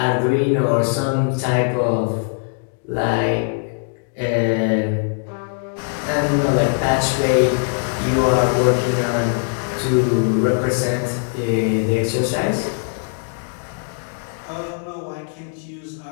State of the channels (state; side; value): silent; right; digital silence